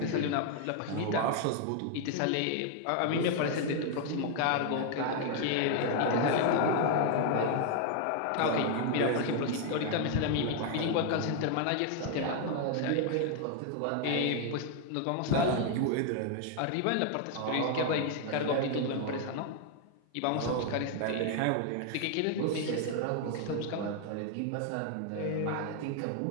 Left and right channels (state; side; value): different; both; correlation 0.00